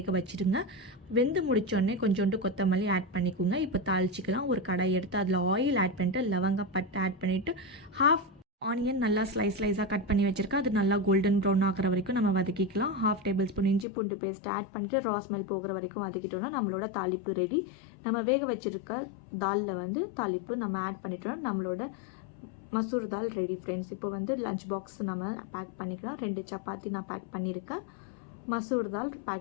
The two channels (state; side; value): drops out; right; at 13.9 s